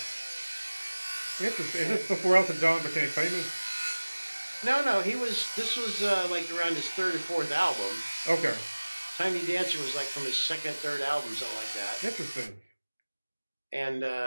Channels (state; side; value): inverted; both; correlation -1.00